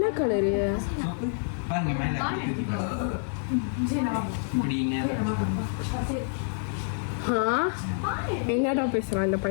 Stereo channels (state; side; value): silent; right; digital silence